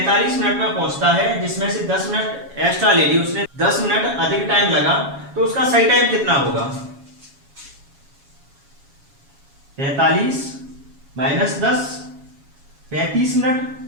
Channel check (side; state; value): left; late; 7.3 ms